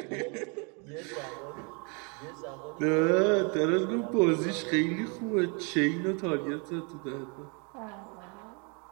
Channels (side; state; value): left; quieter; 34.4 dB